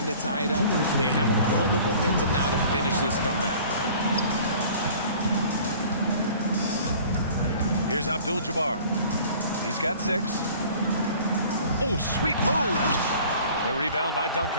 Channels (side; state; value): both; inverted; correlation -0.48